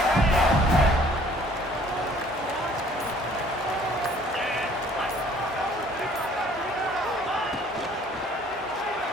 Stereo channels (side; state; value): both; normal; correlation 0.56